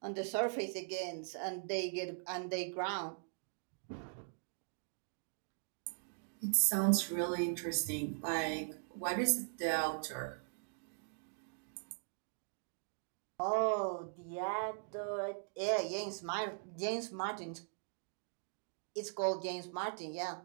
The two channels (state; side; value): silent; left; digital silence